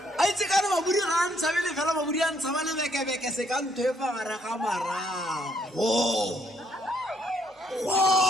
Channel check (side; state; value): both; normal; correlation 0.70